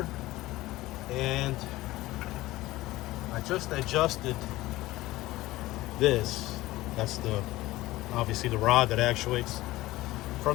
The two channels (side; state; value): right; quieter; 17.8 dB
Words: and I just adjusted this. That's obviously the rod that actuates